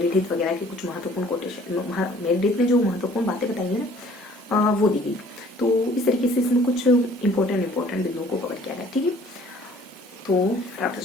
वगैरह के कुछ महत्वपूर्ण कोटेशन, मेरिडिथ ने जो महत्वपूर्ण बातें बताई है ना वो दी गई। तो इस तरीके से इसमें कुछ इंपॉर्टेंट बिंदुओं को कवर किया गया। ठीक है, तो फटाफट से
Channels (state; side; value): normal; both; correlation 0.55